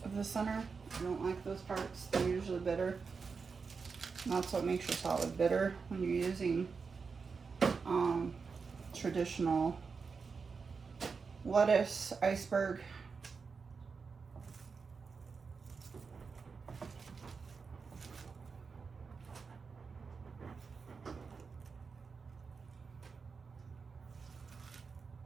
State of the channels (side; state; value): left; quieter; 5.1 dB